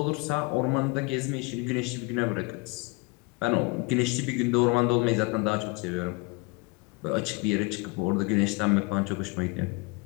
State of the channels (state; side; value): quieter; right; 27.8 dB